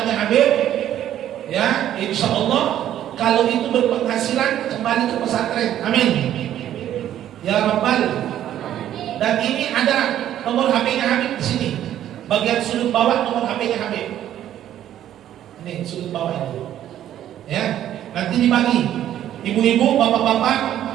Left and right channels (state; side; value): quieter; left; 11.5 dB